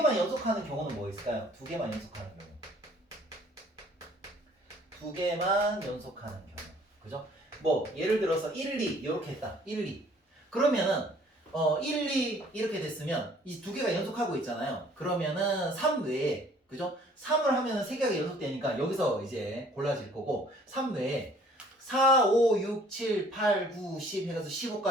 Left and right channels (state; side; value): normal; both; correlation 0.57